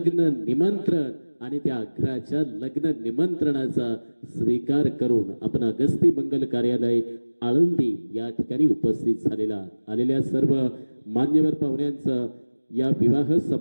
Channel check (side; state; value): both; inverted; correlation -1.00